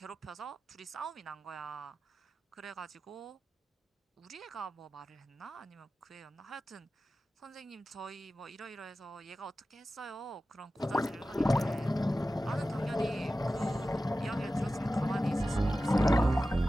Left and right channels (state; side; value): normal; both; correlation 0.94